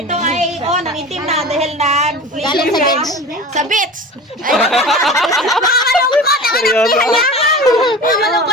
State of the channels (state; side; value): normal; both; correlation 0.34